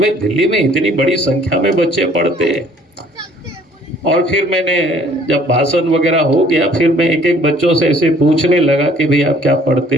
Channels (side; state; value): both; normal; correlation 0.57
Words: दिल्ली में इतनी बड़ी संख्या में बच्चे पढ़ते हैं। और फिर मैंने जब भाषण वगैरह हो गया, फिर मैं एक एक बच्चों से ऐसे पूछने लगा कि भाई आप क्या पढ़ते